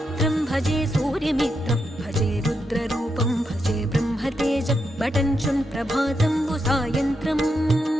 భజే సూర్యమిత్రం భజే రుద్రరూపం భజే బ్రహ్మతేజం బటంచున్ ప్రభాతంబు సాయంత్రం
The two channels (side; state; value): both; normal; correlation 0.83